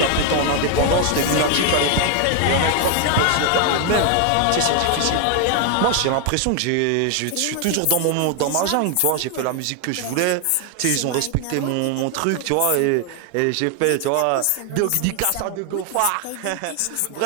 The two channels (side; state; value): both; different; correlation 0.01